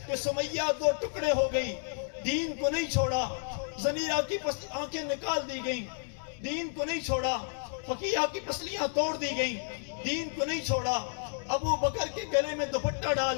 कि सुमैया दो टुकड़े हो गई, दीन को नहीं छोड़ा, जमीरा की आंखें निकाल दी गई, दीन को नहीं छोड़ा, फकीहा की पसलियां तोड़ दी गई, दीन को नहीं छोड़ा, अबू बकर के गले में दुपट्टा डाल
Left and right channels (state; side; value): silent; right; digital silence